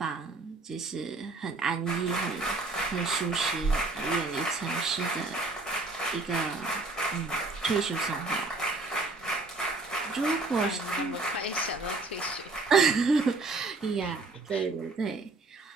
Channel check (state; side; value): quieter; left; 3.4 dB